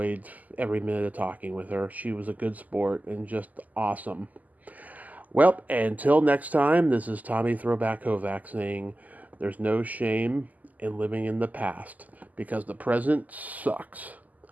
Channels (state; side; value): late; left; 0.079 ms